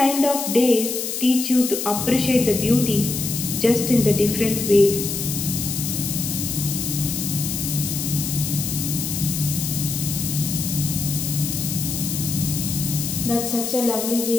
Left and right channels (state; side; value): noise; left; hiss, 3 dB below the sound